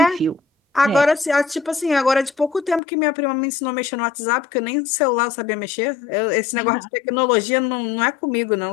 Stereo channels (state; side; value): drops out; right; at 2.8 s